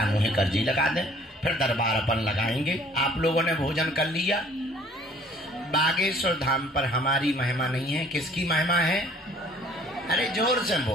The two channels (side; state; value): both; normal; correlation 0.56